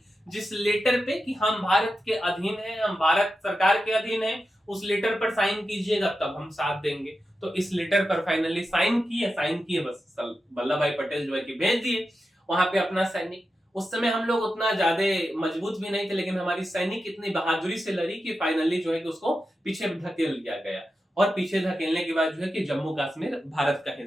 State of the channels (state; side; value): normal; both; correlation 0.90